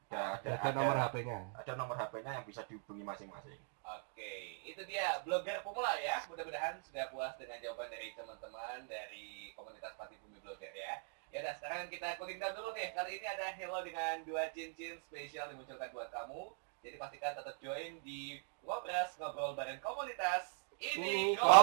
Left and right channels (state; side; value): silent; left; 50 dB below the other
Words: Ada nomor HP-nya. Ada nomor HP-nya yang bisa dihubungi masing-masing. Oke, itu dia blogger pemula ya. Mudah-mudahan sudah puas dengan jawaban dari teman-teman dari komunitas Pati Bumi Blogger ya. Ya udah, sekarang kita cooling down dulu nih. Kali ini ada Hello dengan 2 cincin spesial dimunculkan buat kamu. Jadi pastikan tetap join di Ngobras, ngobrol bareng komunitas. Ini